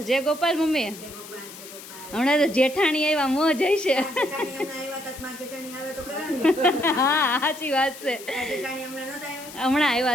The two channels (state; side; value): noise; left; hiss, 15 dB below the sound